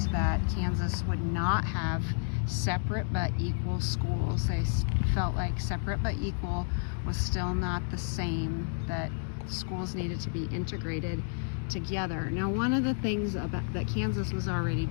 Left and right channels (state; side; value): silent; right; digital silence